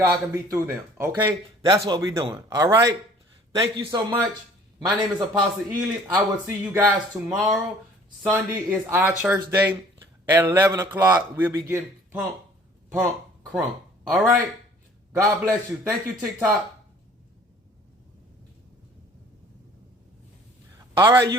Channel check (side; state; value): both; normal; correlation 0.53